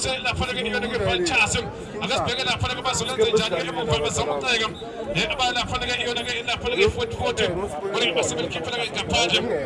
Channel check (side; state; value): both; identical; correlation 1.00